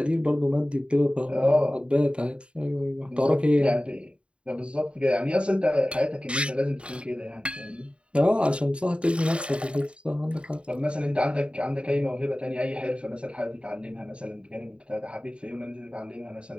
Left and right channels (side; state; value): left; late; 0.057 ms